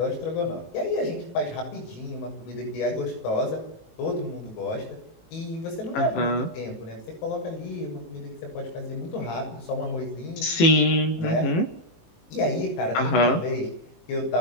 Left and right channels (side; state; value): right; late; 19 ms